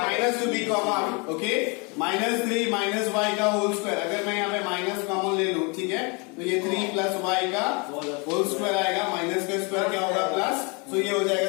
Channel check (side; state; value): right; quieter; 31.3 dB